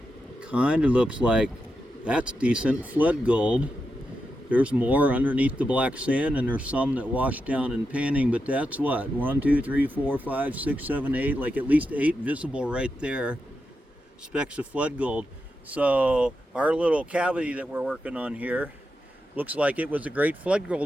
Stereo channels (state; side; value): normal; both; correlation 0.87